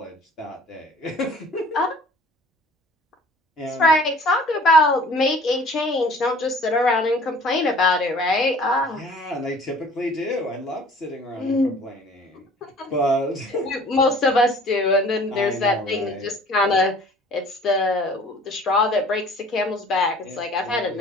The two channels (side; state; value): both; normal; correlation 0.49